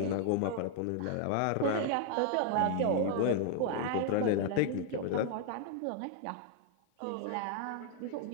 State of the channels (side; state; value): both; different; correlation 0.00